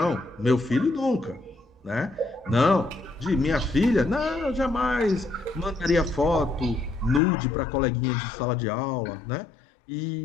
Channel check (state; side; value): drops out; right; at 7.2 s